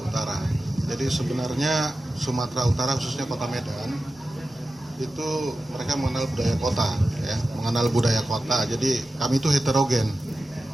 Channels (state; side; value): normal; both; correlation 0.93